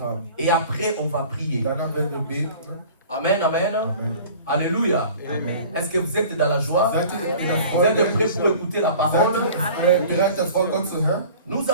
Et après, on va prier. Amen, amen, amen. Alléluia. Est-ce que vous êtes dans la joie? Vous êtes prêts pour écouter la parole? Nous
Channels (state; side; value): inverted; both; correlation -0.44